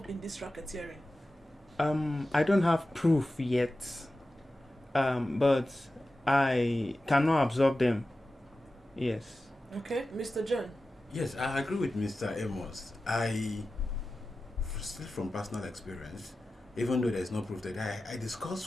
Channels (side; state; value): both; normal; correlation 0.94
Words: in this racketeering? I don't have proof yet, but I cannot absorb them. Yes. Okay, Mr. John. Yes, I agree with Mr. Amos. Still from personal experience, even though there's no proof that I